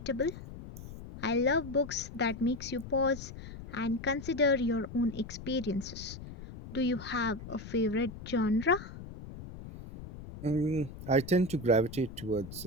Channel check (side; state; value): left; noise; rumble, 12 dB below the sound